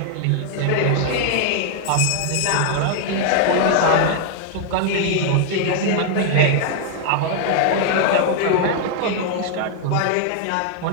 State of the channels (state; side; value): different; both; correlation 0.00